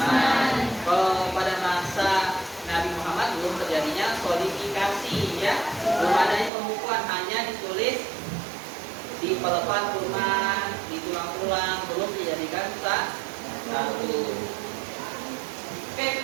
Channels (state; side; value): drops out; left; at 6.5 s